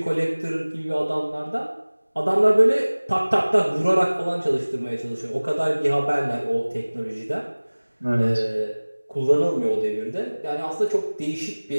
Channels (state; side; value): inverted; both; correlation -1.00